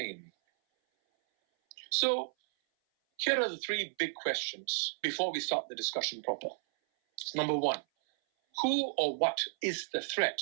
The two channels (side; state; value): left; silent; 56 dB below the other